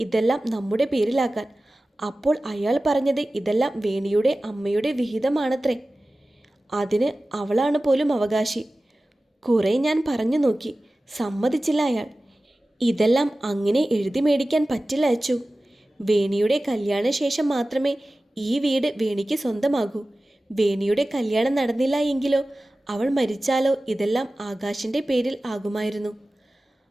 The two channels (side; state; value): both; normal; correlation 0.96